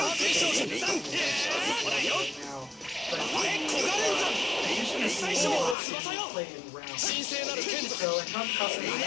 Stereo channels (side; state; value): right; drops out; at 5.8 s